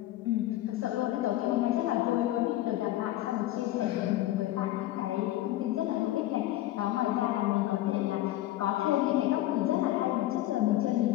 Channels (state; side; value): quieter; right; 15.2 dB